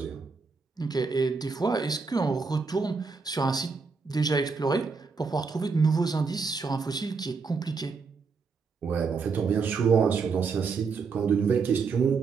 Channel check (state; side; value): quieter; left; 4.9 dB